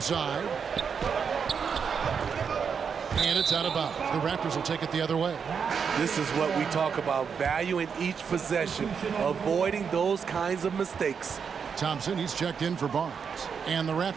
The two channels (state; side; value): quieter; left; 6.5 dB